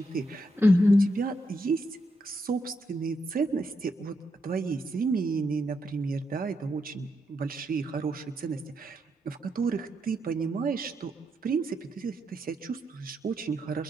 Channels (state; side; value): normal; both; correlation 0.81